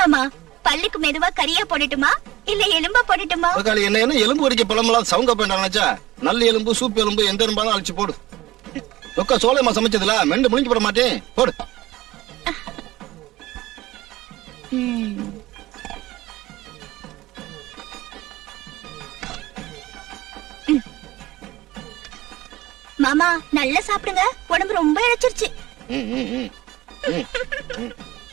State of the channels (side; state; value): left; quieter; 17.4 dB